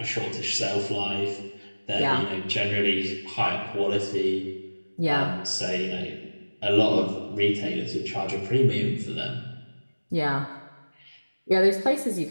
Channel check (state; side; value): inverted; both; correlation -1.00